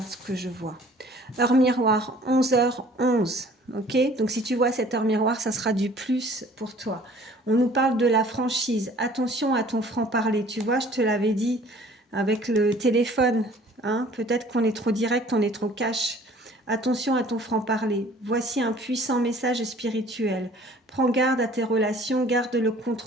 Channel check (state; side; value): normal; both; correlation 0.52